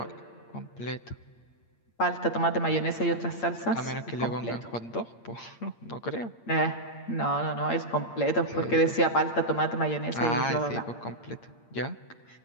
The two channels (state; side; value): late; right; 8.6 ms